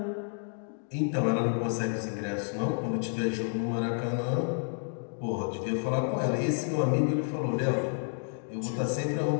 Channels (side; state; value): right; silent; 58 dB below the other